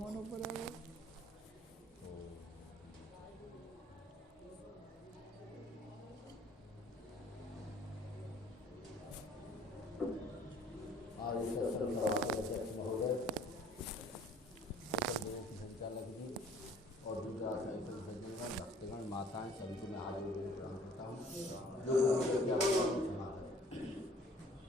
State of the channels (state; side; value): normal; both; correlation 0.55